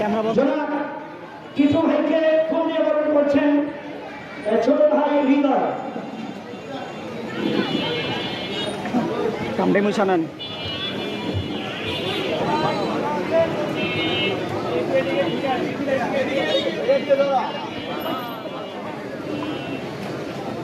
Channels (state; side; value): identical; both; correlation 1.00